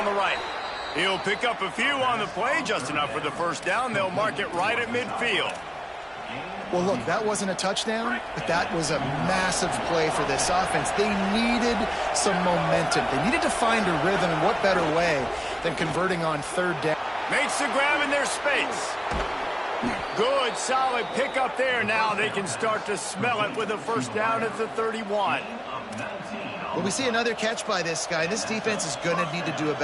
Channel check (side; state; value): both; identical; correlation 1.00